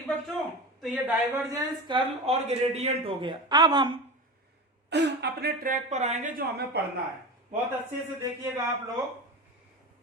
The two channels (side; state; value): both; normal; correlation 0.27